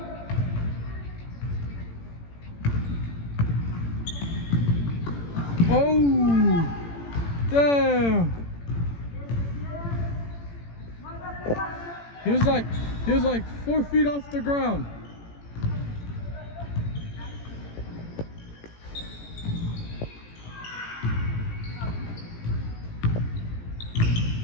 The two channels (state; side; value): late; right; 18 ms